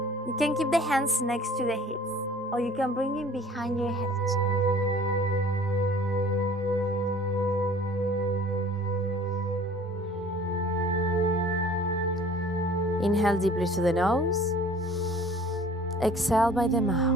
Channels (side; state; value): both; normal; correlation 0.49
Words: You can keep the hands next to the hips, or you can bring it behind your head. Inhale deeply through the nose. Exhale by the